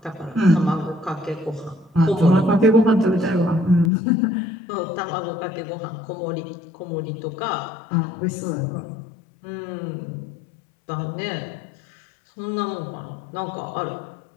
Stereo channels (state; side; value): drops out; right; at 3.9 s